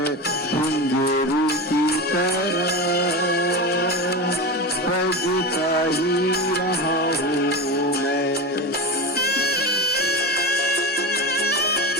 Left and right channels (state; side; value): normal; both; correlation 0.24